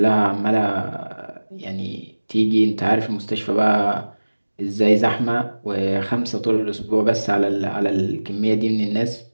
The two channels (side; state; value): both; inverted; correlation -1.00